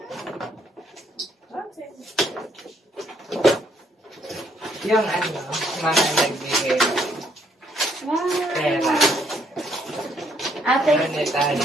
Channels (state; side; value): normal; both; correlation 0.69